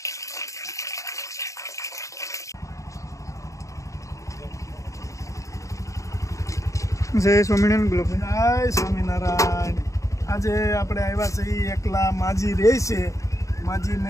જય સ્વામિનારાયણ બોલો ભાઈ. જય સ્વામિનારાયણ. આજે આપણે આવ્યા છે ઈ એકલા માજી રહે છે,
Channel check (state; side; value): late; right; 0.15 ms